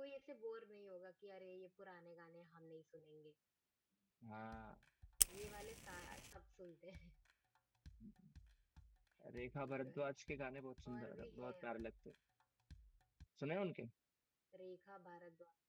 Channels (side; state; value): both; identical; correlation 1.00